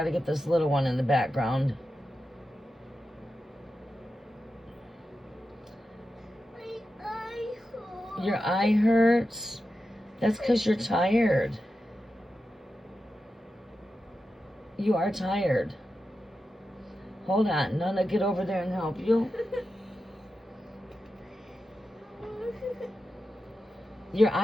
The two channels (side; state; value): both; normal; correlation 0.91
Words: to get this little one in the background. Your eye hurts? That's because you're tired. You are tired. Hold on. Nana, get over there and help you. Your